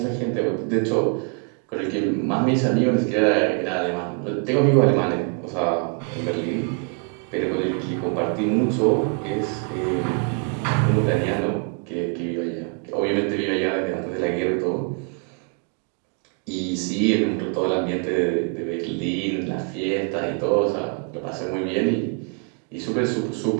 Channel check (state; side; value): quieter; left; 39.0 dB